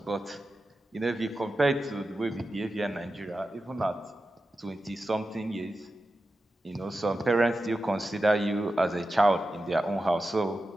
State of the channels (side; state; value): both; normal; correlation 0.92